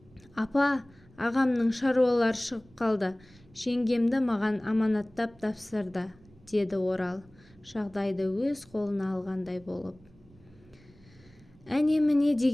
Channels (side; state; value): right; noise; rumble, 27 dB below the sound